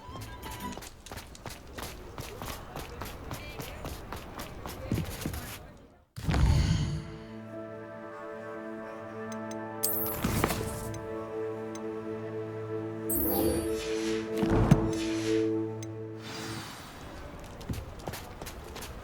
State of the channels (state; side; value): identical; both; correlation 1.00